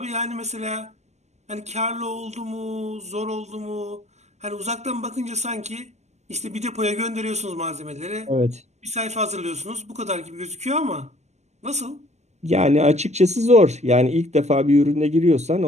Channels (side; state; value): left; late; 0.33 ms